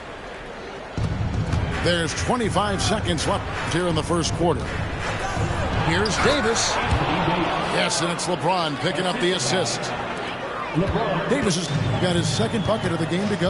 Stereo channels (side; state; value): both; identical; correlation 1.00